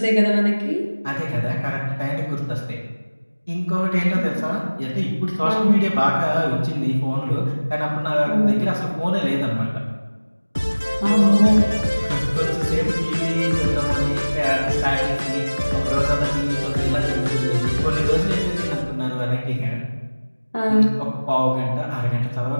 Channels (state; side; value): inverted; both; correlation -1.00